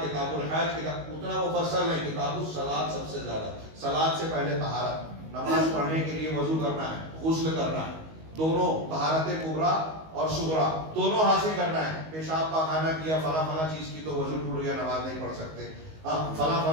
الحج، اتنا مفصل ہے۔ کتاب الصلاۃ سب سے زیادہ، صلاۃ سے پہلے طہارت، نماز پڑھنے کے لیے وضو کرنا ہے، غسل کرنا ہے، دونوں طہارت کبریٰ اور صغریٰ دونوں حاصل کرنا ہے۔ پیشاب پاخانہ کیا، فلاں فلاں چیز کی تو وضو ٹوٹ گیا، نماز نہیں پڑھ سکتے۔ فلاں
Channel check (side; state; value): left; late; 19 ms